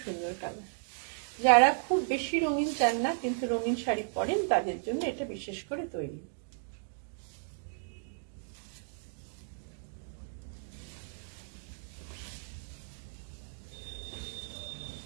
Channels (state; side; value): silent; left; digital silence